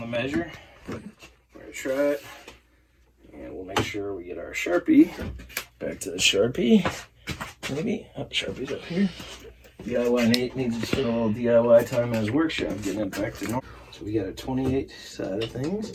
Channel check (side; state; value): both; identical; correlation 1.00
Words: measure. We're going to try it, and we'll make sure we get our Sharpie. Back to the Sharpie, maybe. Oh, Sharpie's up here. DIYNate needs to spend a little DIY time in his workshop getting it back to normal. So we got a 28 side of